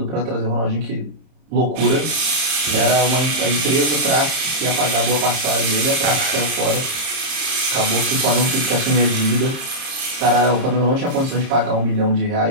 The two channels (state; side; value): late; left; 30 ms